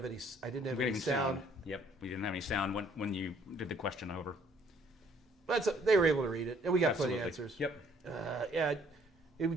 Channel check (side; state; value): both; normal; correlation 0.62